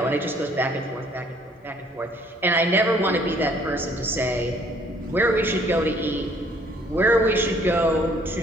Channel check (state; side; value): normal; both; correlation 0.61